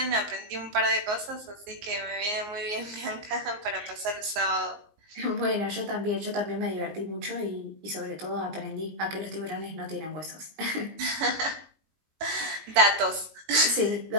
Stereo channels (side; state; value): left; late; 19 ms